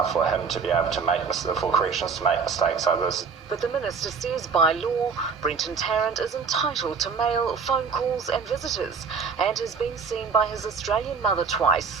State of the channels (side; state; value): left; quieter; 5.5 dB